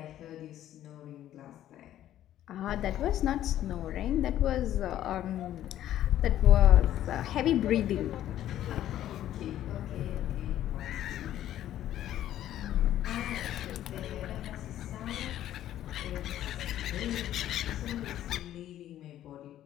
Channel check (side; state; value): right; quieter; 12.3 dB